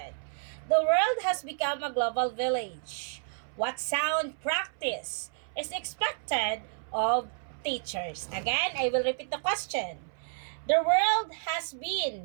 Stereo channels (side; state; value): left; silent; 58 dB below the other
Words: The world has become a global village. What sound practice is expected of teachers? Again, I will repeat the question. The world has